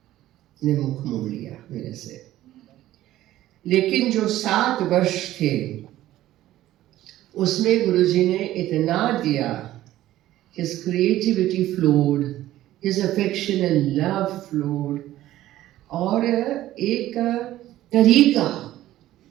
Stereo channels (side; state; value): left; quieter; 14.4 dB